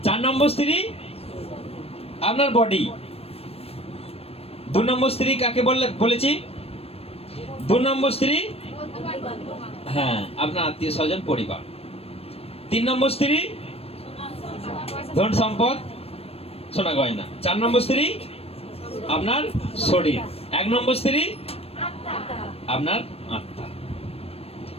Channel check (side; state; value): right; late; 0.28 ms